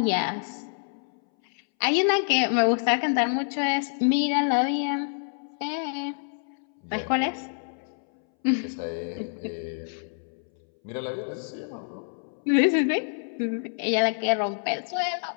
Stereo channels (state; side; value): silent; right; 60 dB below the other